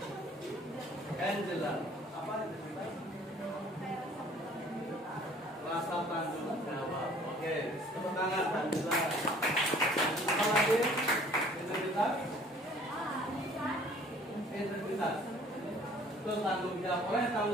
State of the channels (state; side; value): normal; both; correlation 0.54